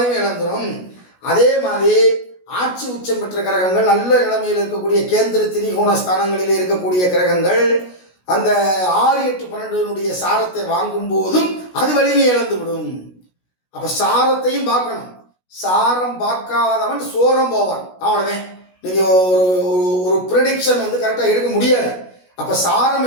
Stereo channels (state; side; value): late; right; 16 ms